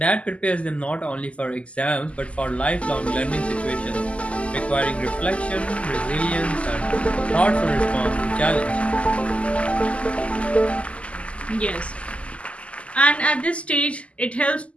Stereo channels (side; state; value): right; late; 0.060 ms